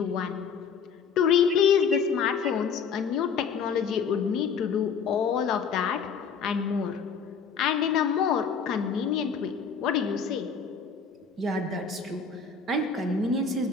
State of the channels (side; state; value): right; quieter; 6.1 dB